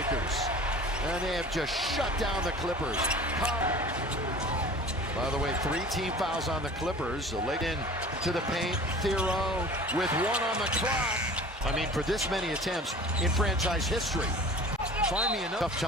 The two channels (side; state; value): both; normal; correlation 0.42